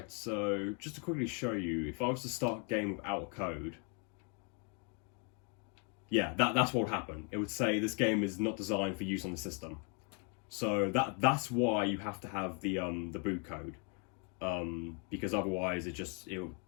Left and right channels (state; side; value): quieter; right; 35.9 dB